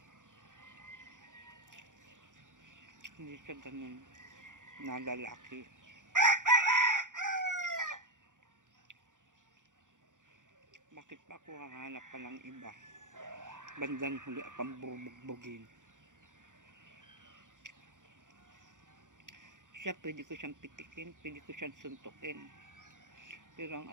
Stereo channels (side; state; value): left; late; 0.87 ms